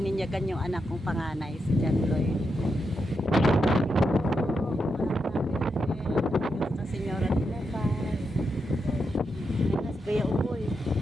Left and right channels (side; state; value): both; normal; correlation 0.84